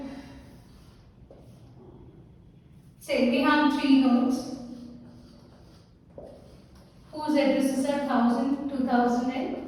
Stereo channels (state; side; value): identical; both; correlation 1.00